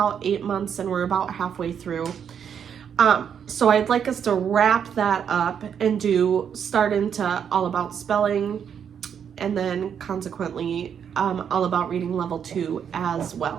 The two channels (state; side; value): quieter; left; 8.0 dB